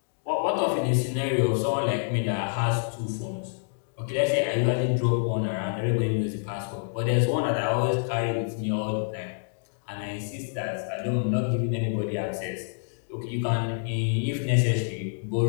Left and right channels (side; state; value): right; silent; digital silence